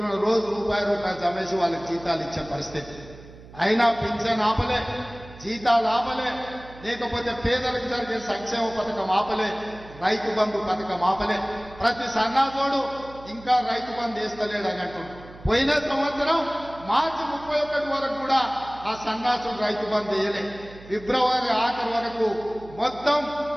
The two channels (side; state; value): right; noise; hum, 19 dB below the sound